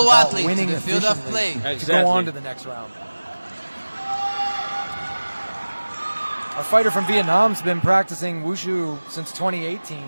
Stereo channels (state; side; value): inverted; both; correlation -1.00